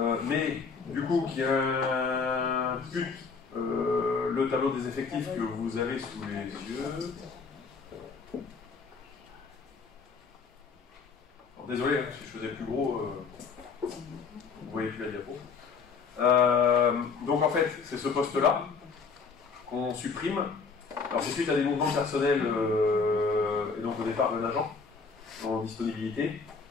Mais, du coup, qui implique le tableau des effectifs que vous avez sous les yeux. Alors, désolé, hein, si je faisais plus gros, vous voyez plus la diapo. Donc en fait, c'est ce poste-là qu'on supprime. Alors c'est suite à des mouvements personnels, et donc au départ d'un agent en disponibilité.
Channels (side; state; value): right; quieter; 5.1 dB